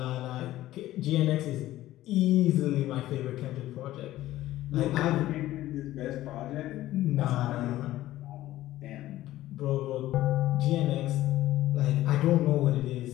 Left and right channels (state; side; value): quieter; right; 15.0 dB